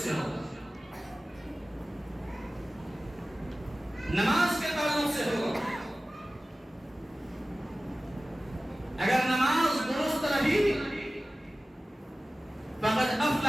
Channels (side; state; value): both; normal; correlation 0.97